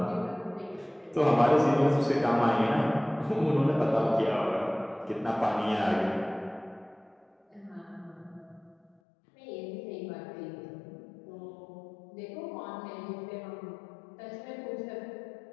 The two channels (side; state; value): right; drops out; at 9.0 s